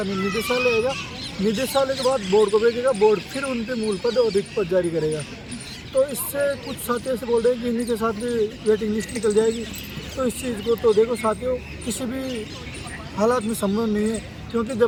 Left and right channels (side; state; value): both; identical; correlation 1.00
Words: निदेशालय आएगा, निदेशालय के बाद बोर्ड को भेजेगा, बोर्ड फिर उन पर मूल पद और रिक्त पद जारी करेगा। तो इससे कुछ साथी ऐसे बोल रहे हैं कि इन्हीं के साथ भी वेटिंग लिस्ट निकल जाएगी। तो इस चीज़ को तो देखो साथियों, किसी भी हालात में संभव नहीं है, क्योंकि